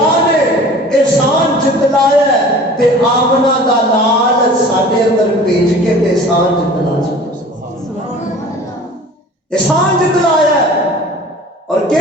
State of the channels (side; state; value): both; normal; correlation 0.44